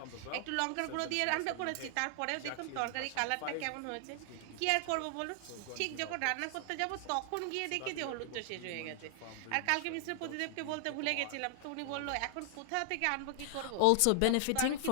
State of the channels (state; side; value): different; both; correlation 0.00